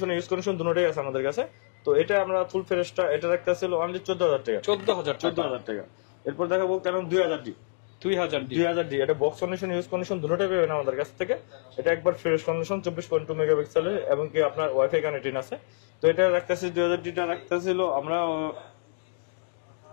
use condition দুটোটাই আছে আমাদের কাছে। তো এটা আমরা ফুল ফ্রেশটা এটা রাখতে ছিল অনলি 14000 টাকা, 14000 টাকা। এরপর দেখাবো কেন 2000D এটা বক্স কন্ডিশন, ইউজ কন্ডিশন দুটোটাই পাবেন আমাদের কাছ থেকে। এটা একবার ফ্রেশ কন্ডিশন, 24.2 মেগাপিক্সেলের, এবং কি আপনার ওয়াইফাই কানেক্টিং আছে। তো এটা রাখতেছি 2000D টা রাখতেছিল আমরা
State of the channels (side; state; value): right; silent; digital silence